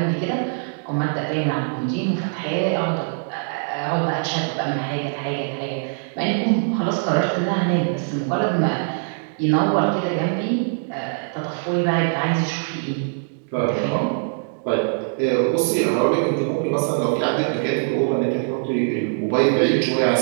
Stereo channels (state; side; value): silent; left; digital silence